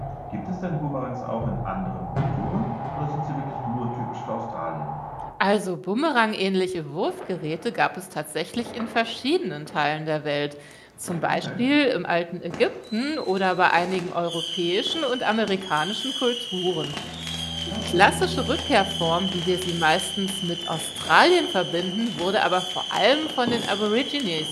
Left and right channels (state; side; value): identical; both; correlation 1.00